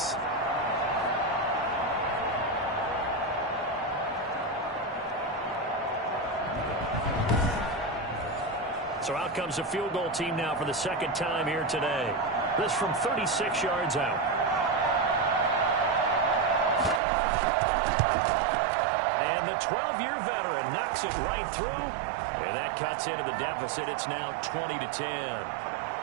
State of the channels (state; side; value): drops out; left; at 17.0 s